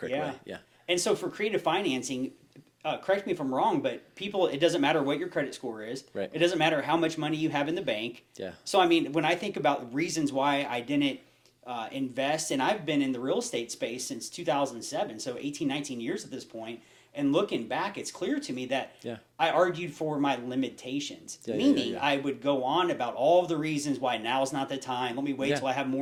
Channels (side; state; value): both; identical; correlation 1.00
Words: way. Yeah. And so for creative financing, correct me if I'm wrong, but it doesn't matter what your credit score is. Right. It doesn't matter how much money you have in the bank. Yeah. So, I mean, when I think about reasons why I didn't invest, and I've been in the real estate space since 2007, so 18, 19 years at this point, and looking back, it's clear to me that I argued for my limitations, meaning I would go on about all of the reasons why now's not the time. Let me wait till I have